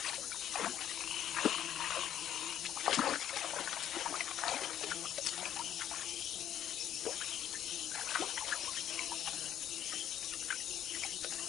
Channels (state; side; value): quieter; right; 10.7 dB